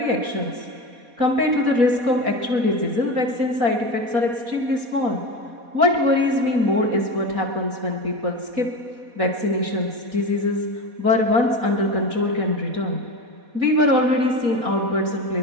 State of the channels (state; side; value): late; left; 4.2 ms